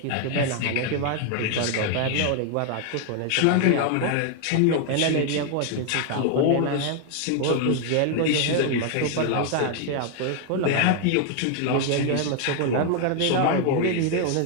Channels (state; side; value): different; both; correlation 0.00